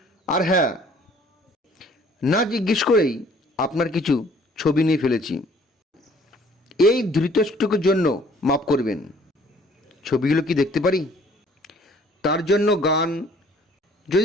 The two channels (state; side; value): normal; both; correlation 0.57